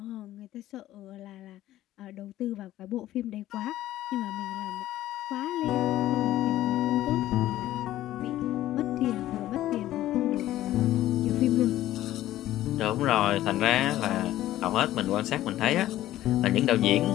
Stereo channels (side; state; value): right; quieter; 14.2 dB